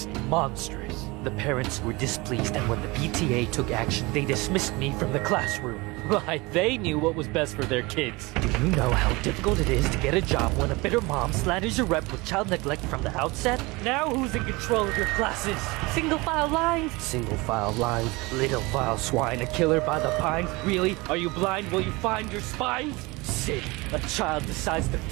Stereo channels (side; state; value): left; quieter; 23.9 dB